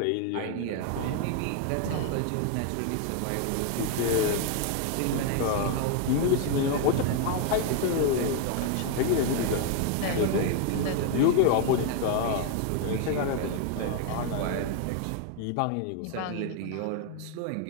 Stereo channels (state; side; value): different; both; correlation 0.01